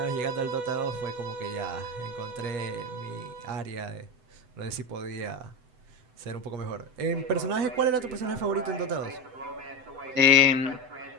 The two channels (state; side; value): late; left; 7.9 ms